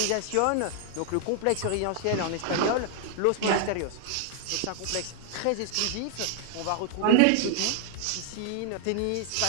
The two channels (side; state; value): both; different; correlation 0.00